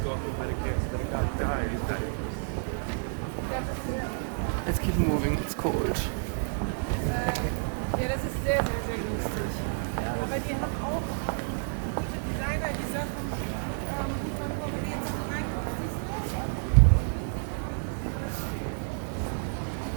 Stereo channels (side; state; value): left; silent; digital silence